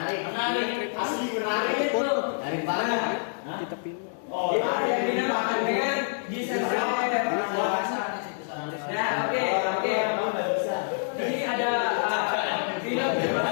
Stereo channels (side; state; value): right; silent; digital silence